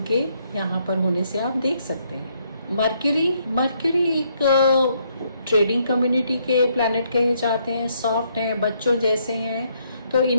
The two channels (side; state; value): both; inverted; correlation -0.73